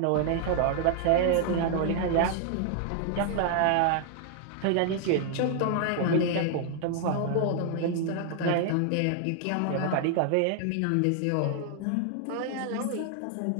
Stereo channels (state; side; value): different; both; correlation 0.00